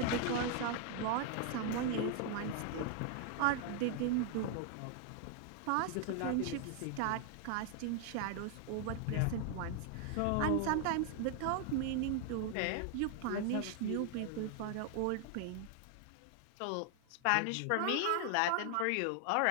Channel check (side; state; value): both; different; correlation 0.00